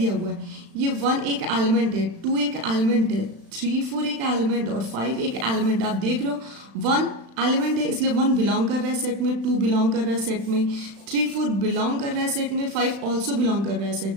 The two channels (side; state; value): left; late; 36 ms